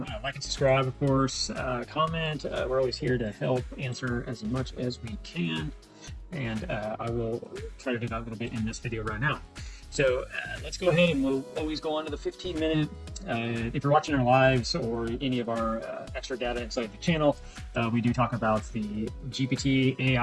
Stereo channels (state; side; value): identical; both; correlation 1.00